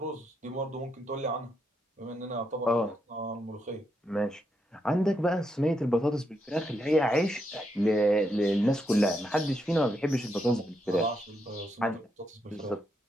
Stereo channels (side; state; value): both; normal; correlation 0.80